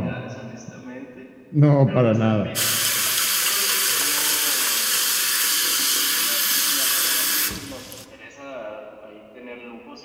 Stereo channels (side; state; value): both; identical; correlation 1.00